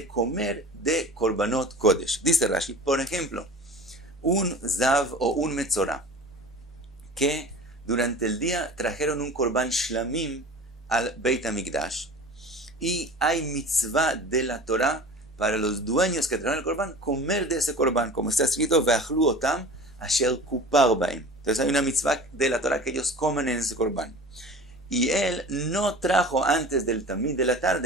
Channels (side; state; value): both; normal; correlation 0.39